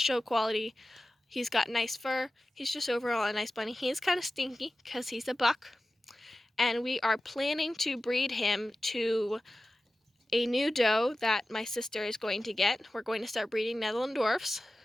quality. He's got nice fur. He's just overall a nice bunny. He is kind of stinky because he's a buck. And we are planning to breed him to a new doe that my sister is going to get. We're going to start breeding Netherlanddorfs.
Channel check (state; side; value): normal; both; correlation 0.95